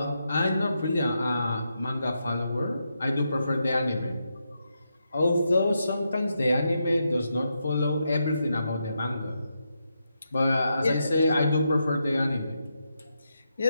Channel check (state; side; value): inverted; both; correlation -0.84